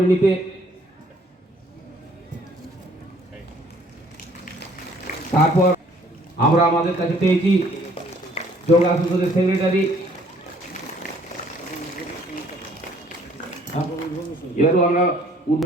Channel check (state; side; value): normal; both; correlation 0.60